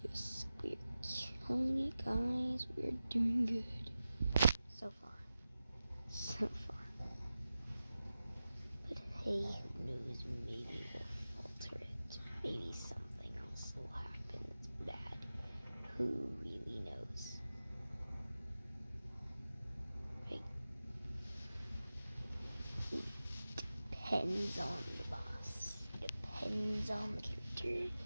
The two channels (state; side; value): inverted; both; correlation -0.94